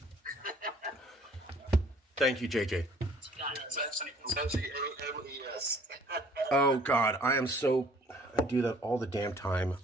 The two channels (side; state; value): both; normal; correlation 0.56